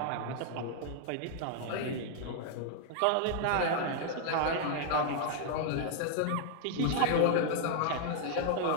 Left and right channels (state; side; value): different; both; correlation 0.00